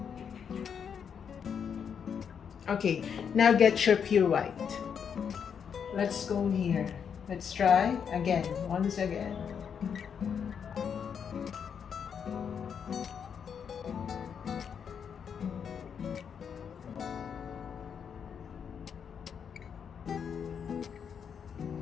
Okay, now get your pure white. Let's go here. Let's try again, once again.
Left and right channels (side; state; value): right; quieter; 7.3 dB